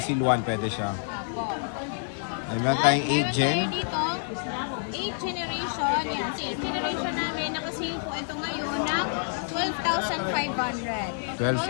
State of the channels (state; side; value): silent; right; digital silence